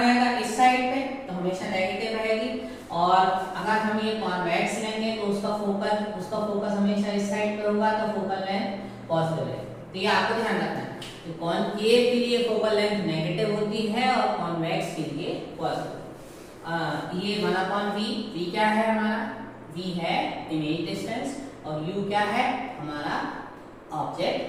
इस साइड पे, तो हमेशा नेगेटिव रहेगी। और अगर हम ये कॉन्वेक्स लेंगे तो उसका फोकस हमेशा इस साइड पे होगा, तो फोकल लेंथ पॉजिटिव है। तो ये आपको ध्यान रखना है। तो कॉन्केव के लिए फोकल लेंथ नेगेटिव होती है और कॉन्वेक्स के लिए पॉजिटिव। ये 1/v, v क्या है हमारा? v है इमेज डिस्टेंस और u क्या है हमारा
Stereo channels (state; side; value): identical; both; correlation 1.00